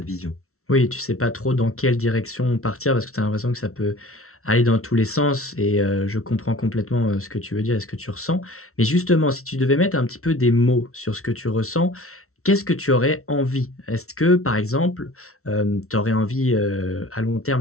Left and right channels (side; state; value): right; late; 0.63 ms